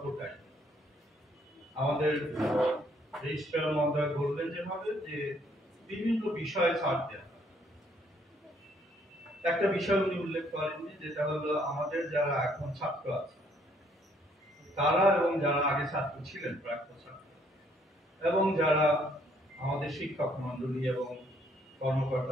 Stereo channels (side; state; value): both; normal; correlation 0.66